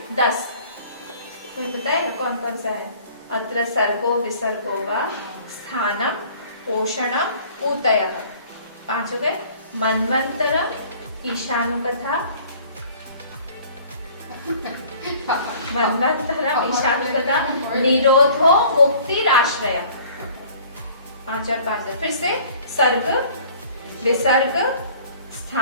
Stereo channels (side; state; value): both; inverted; correlation -0.51